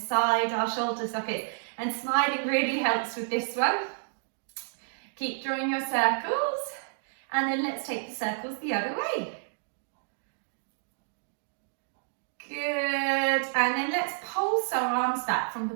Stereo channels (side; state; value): left; silent; digital silence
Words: our shoulder sockets, and sliding really helps with this one. Keep drawing your circles, and then let's take the circles the other way. Good, and then let's pulse our arms back from the